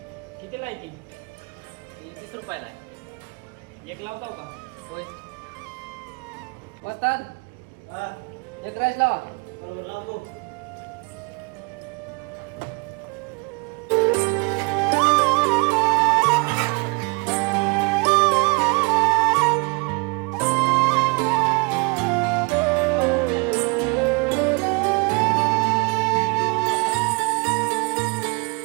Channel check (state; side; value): quieter; left; 29.9 dB